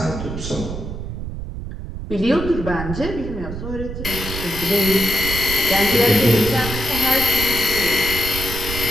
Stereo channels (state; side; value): noise; right; rumble, 7 dB below the sound